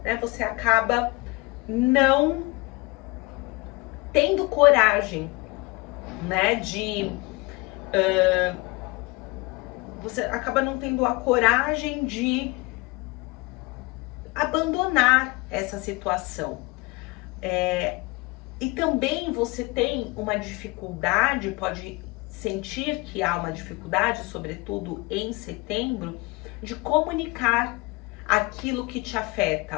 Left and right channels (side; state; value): right; quieter; 25.2 dB